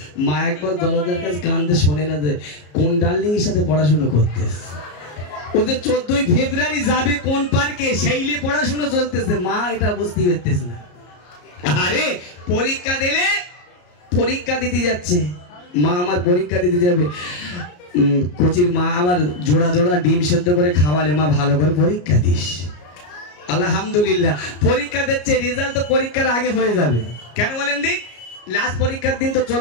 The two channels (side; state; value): right; late; 34 ms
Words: মা একবার দরজার কাছে কানতে শোনে না যে কোন ডার্লিং এর সাথে পড়াশোনা করতে। ওদের 14ই ফেব্রুয়ারি যাবে কোন পার্কে, সেইলে পড়াশোনা চলতেছে। মা এটা বুঝতে পারতেছে না। আরে পরীক্ষা দিলে, পরীক্ষা দিতে যাচ্ছে মা, আমার পরীক্ষা দিতে যাবে। কোচির মা আমার জোড়া জোড়া ডিম সেদ্ধ করে খাওয়ালে, মা ভালো করে পরীক্ষা দিস। আলহামদুলিল্লাহ পরীক্ষা দিচ্ছে, রেজাল্ট তো পরীক্ষার আগে হয়ে যাবে। কেন বলেন দিক? লাস্ট পরীক্ষার দিন তো